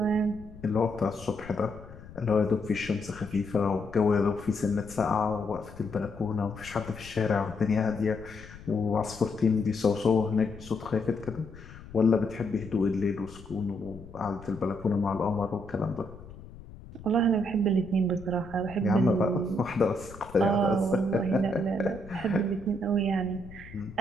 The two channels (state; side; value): noise; left; rumble, 17 dB below the sound